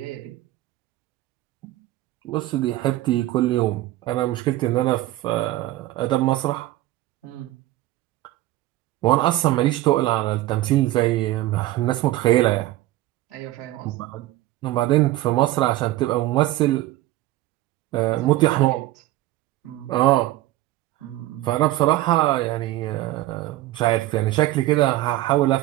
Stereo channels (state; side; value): quieter; left; 16.3 dB